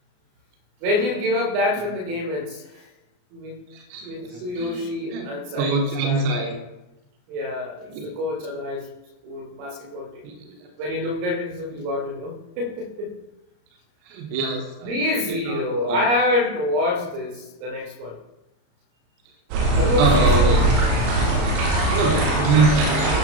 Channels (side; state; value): left; late; 34 ms